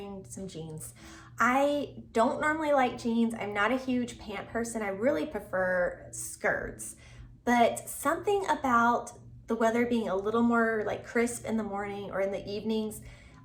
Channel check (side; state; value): both; identical; correlation 1.00